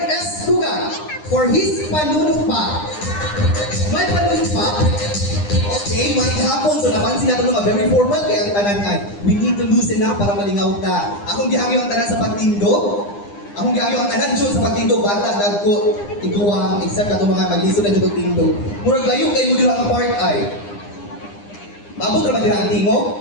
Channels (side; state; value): right; late; 9.9 ms